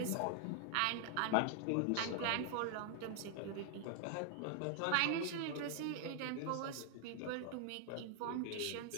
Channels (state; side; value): different; both; correlation 0.00